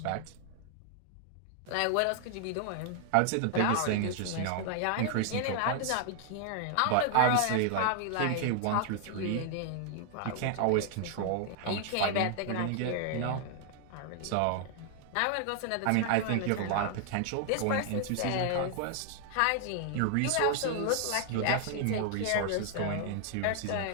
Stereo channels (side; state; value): both; different; correlation 0.00